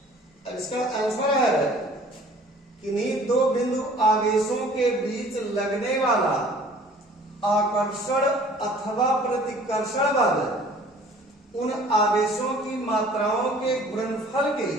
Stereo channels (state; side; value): normal; both; correlation 0.51